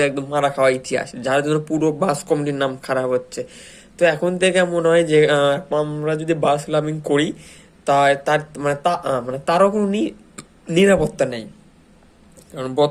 একদম মারা খাওয়া ইতিহাস, যার জন্য পুরো বাস কমিটির নাম খারাপ হচ্ছে। তো এখন থেকে মনে হয় যে আমরা যদি বাস লাভিং করি, তা তার মানে মানে তারও কোনো নিরাপত্তা নেই। কারণ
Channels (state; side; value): identical; both; correlation 1.00